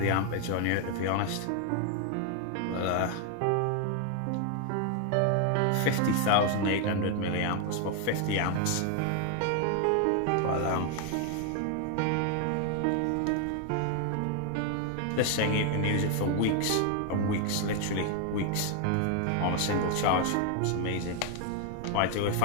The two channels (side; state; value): both; different; correlation 0.00